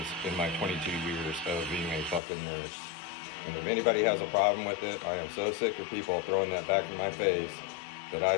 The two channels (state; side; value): drops out; right; at 2.2 s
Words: in my 22 years of being a fucking nurse. And if anybody has a problem with it, I am so sick of people throwing that back in my face that